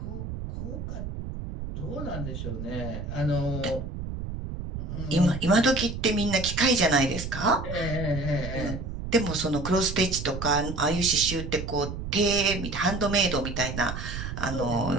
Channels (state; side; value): noise; right; rumble, 6 dB below the sound